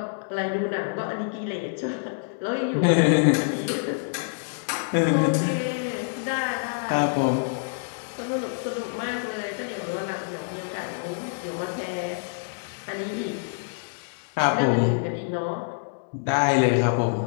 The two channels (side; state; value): right; silent; digital silence